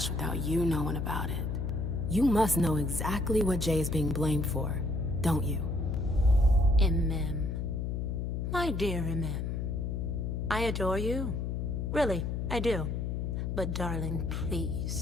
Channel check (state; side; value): noise; left; hum, 2 dB below the sound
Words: without you knowing about it. You must know exactly what Jay is being blamed for, don't you? Imem. My dear Imem. I adore you. Really, I do. But darling,